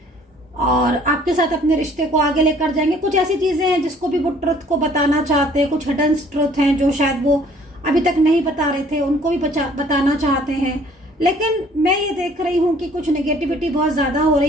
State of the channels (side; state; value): both; normal; correlation 0.57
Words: और आपके साथ अपने रिश्ते को आगे लेकर जाएंगे। कुछ ऐसी चीजें हैं जिसको भी वो ट्रुथ को बताना चाहते हैं, कुछ हिडन ट्रुथ हैं जो शायद वो अभी तक नहीं बता रहे थे, उनको भी बताना चाहते हैं। लेकिन मैं ये देख रही हूँ कि कुछ नेगेटिविटी बहुत ज्यादा हो